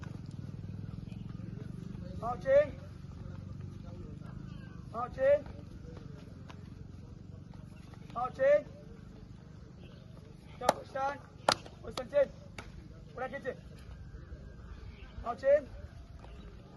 पाँव चेंज, पाँव चेंज, पाँव चेंज, पोजीशन चेंज, पूरा खींचे, पाँव चेंज,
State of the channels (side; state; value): both; identical; correlation 1.00